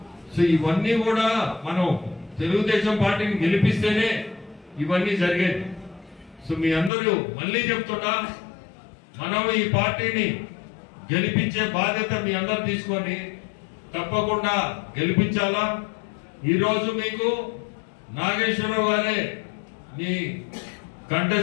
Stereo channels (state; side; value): drops out; right; at 6.9 s